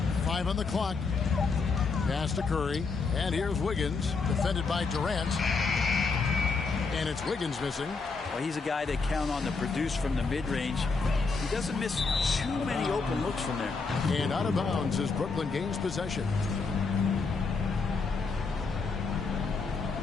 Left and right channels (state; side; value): quieter; right; 4.5 dB